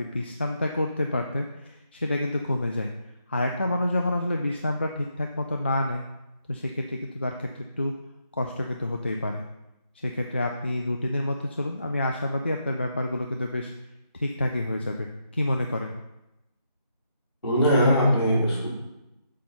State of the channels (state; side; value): inverted; both; correlation -0.78